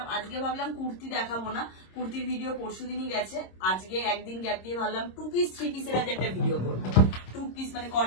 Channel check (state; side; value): late; right; 26 ms